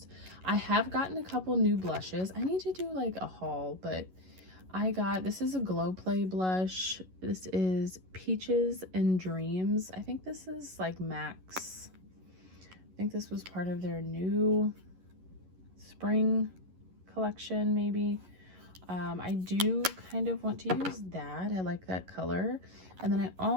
I have gotten a couple new blushes. I need to do like a haul, but this is a Glow Play blush. This is Peaches and Dreams. I think this is like Max. I think this was part of their new spring collection, maybe. I do kind of want to use that. I like that color. And then I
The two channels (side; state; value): left; late; 11 ms